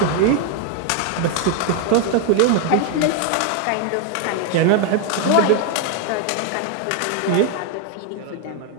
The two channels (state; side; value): different; both; correlation 0.01